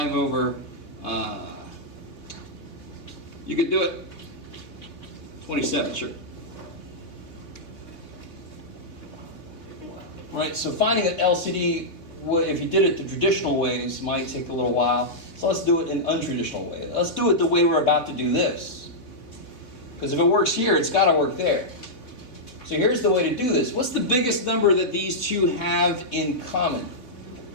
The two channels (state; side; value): late; right; 3.8 ms